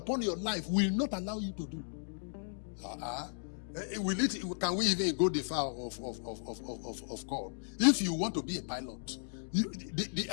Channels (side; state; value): right; silent; digital silence